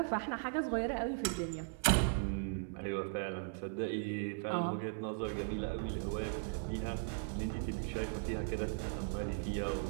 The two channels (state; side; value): silent; left; 52 dB below the other